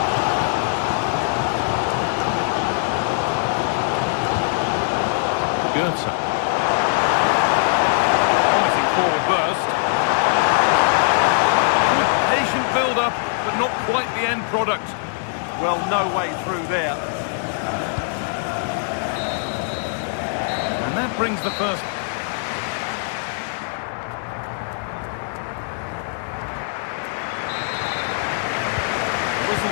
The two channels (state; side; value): silent; right; digital silence